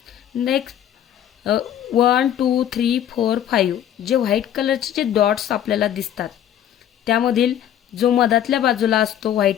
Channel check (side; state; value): right; quieter; 10.5 dB